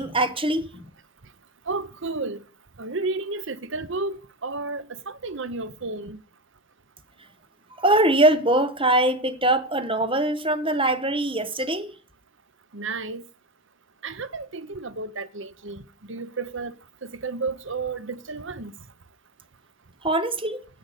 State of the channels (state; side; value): normal; both; correlation 0.15